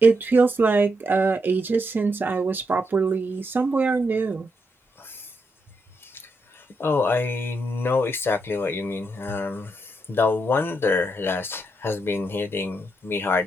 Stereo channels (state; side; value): normal; both; correlation 0.81